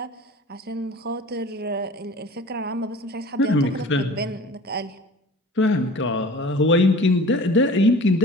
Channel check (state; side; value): normal; both; correlation 0.42